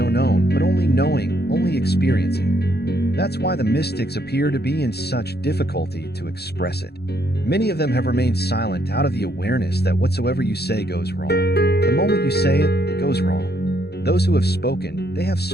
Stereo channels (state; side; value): late; right; 0.47 ms